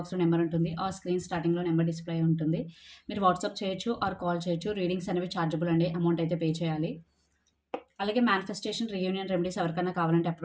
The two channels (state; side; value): identical; both; correlation 1.00